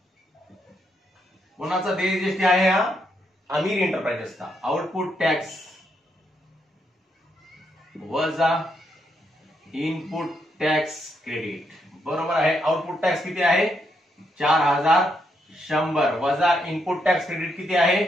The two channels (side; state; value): both; normal; correlation 0.78